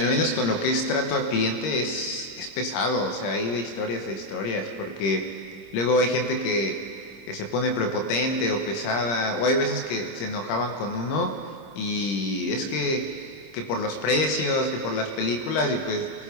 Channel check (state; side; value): late; right; 26 ms